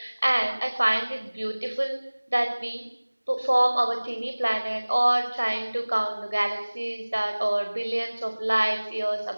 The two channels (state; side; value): inverted; both; correlation -1.00